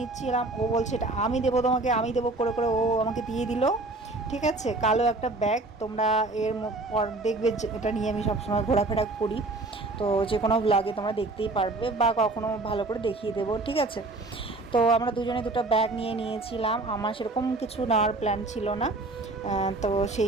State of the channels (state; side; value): quieter; left; 3.1 dB